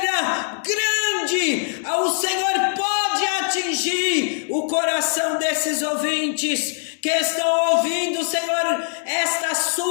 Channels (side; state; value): right; silent; digital silence